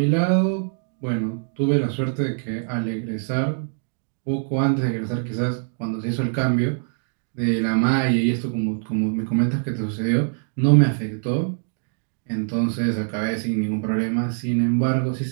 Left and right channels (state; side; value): silent; left; digital silence